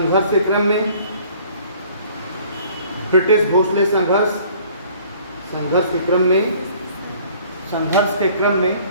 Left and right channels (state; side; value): inverted; both; correlation -0.54